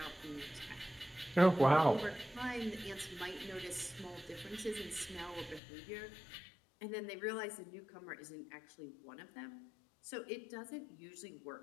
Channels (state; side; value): drops out; right; at 5.6 s